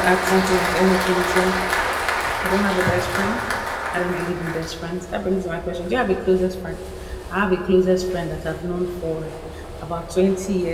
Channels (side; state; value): both; identical; correlation 1.00